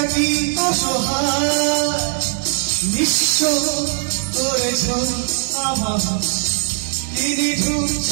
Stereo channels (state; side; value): silent; left; 66 dB below the other